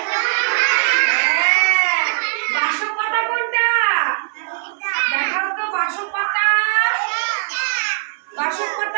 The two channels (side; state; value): left; silent; 58 dB below the other